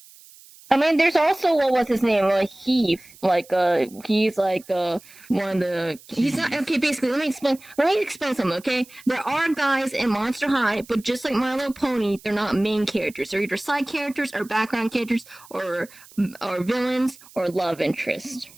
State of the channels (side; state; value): right; noise; hiss, 23 dB below the sound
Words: I mean, there's also what was his name? Heath. He's one of the. He's not okay. Basically, let me explain something. Okay, there are guys in Monster High, but just like My Little Pony, they're not main characters. They're either side characters or background characters or villains or love interest.